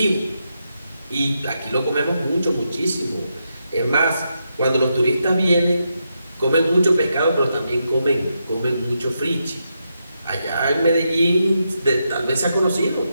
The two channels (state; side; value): inverted; both; correlation -0.83